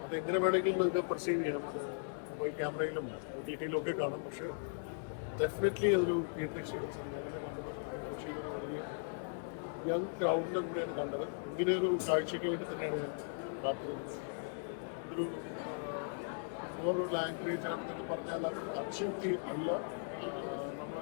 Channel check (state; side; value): silent; right; digital silence